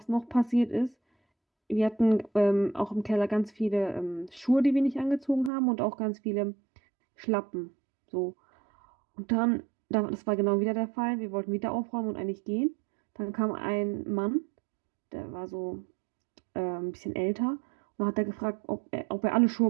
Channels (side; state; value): left; drops out; at 5.5 s